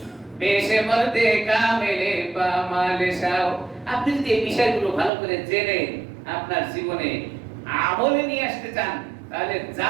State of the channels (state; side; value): drops out; left; at 5.1 s